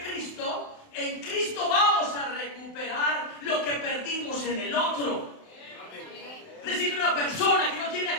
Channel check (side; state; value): right; late; 27 ms